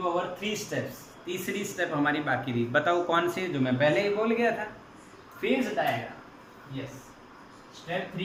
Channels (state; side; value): identical; both; correlation 1.00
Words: अवर 3 स्टेप्स। तीसरी स्टेप हमारी बाकी रही, बताओ कौन सी, जो मैं पहले ही बोल गया था, फेज डायग्राम। यस, स्टेप